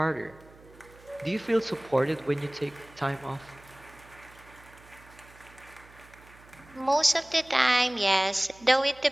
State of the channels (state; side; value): noise; right; hum, 24 dB below the sound